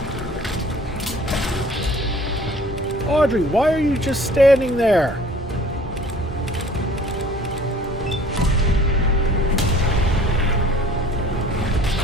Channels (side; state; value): both; normal; correlation 0.51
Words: Audrey, why are you just standing there?